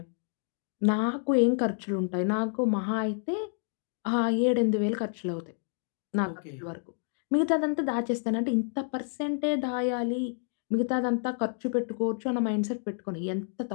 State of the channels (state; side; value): silent; right; 57 dB below the other